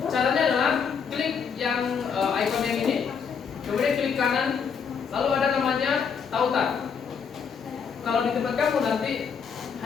caranya adalah klik yang icon yang ini, kemudian klik kanan, lalu ada namanya tautan. Kalau di tempat kamu nanti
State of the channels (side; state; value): right; quieter; 6.5 dB